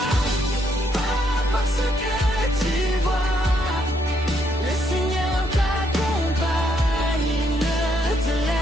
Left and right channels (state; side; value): normal; both; correlation 0.74